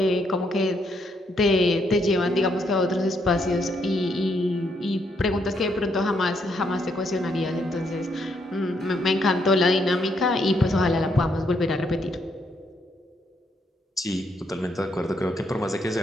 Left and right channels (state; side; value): normal; both; correlation 0.75